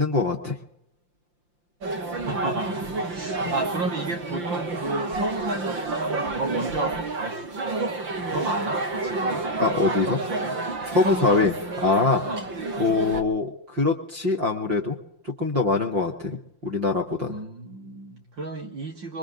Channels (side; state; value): left; late; 5.7 ms